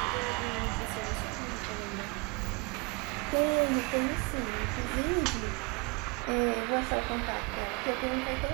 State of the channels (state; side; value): quieter; left; 29.9 dB